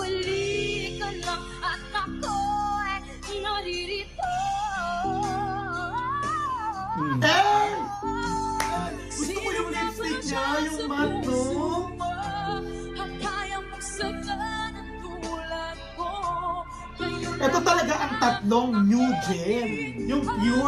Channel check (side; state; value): both; identical; correlation 1.00